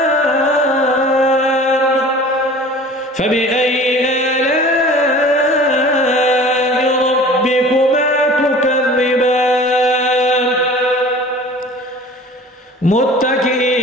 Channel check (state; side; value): normal; both; correlation 0.43